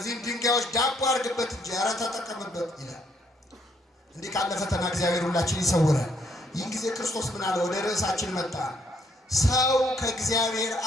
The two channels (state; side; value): normal; both; correlation 0.70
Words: ድንጋዮች ዳቦ አድርግበት እንጂ ኧረ ተጠቀምበት ይላል። እንዲህ ካለ ፈተና እግዚአብሔር ሁላችን ይሰውራል። ይህን ጊዜ ክርስቶስ ምን አለ? ወደ ርዕሳችን መጣ። ሰው ከእግዚአብሔር